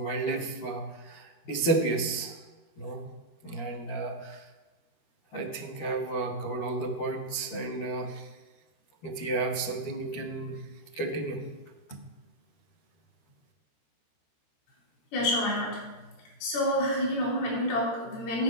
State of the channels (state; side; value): late; right; 13 ms